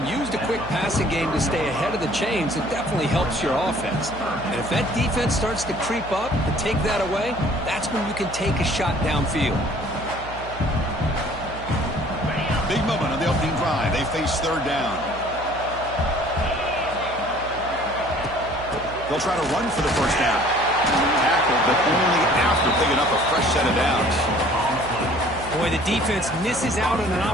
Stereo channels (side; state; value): right; noise; hum, 14 dB below the sound